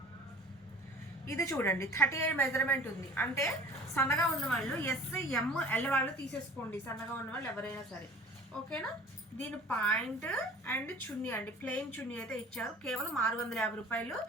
ఇది చూడండి 38 మెజర్మెంట్ ఉంది. అంటే సన్నగా ఉన్న వాళ్ళు ఎస్, ఎం, ఎల్ వాళ్ళు తీసేసుకోండి, సన్నగా ఉన్న వాళ్ళు ఎవరైనా సరే, ఓకేనా. దీని పాయింట్ అండ్ చున్నీ అండి, ప్లెయిన్ చున్నీ అయితే ఇచ్చారు. కేవలం 650 రూపాయలు.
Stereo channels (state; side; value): normal; both; correlation 0.44